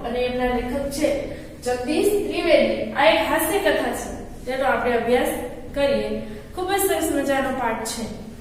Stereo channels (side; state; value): both; identical; correlation 1.00